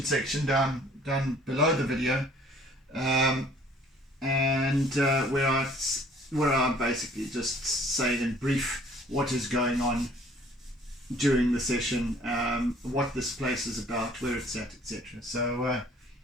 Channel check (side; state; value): both; normal; correlation 0.56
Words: section down below the video, and where I basically just say in brief what is going on during the session, what this place is about, where it's at, etc. So